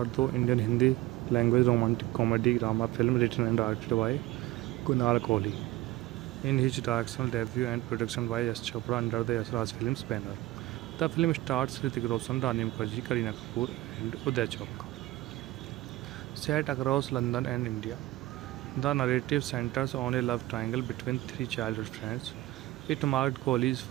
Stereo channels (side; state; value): left; quieter; 17.7 dB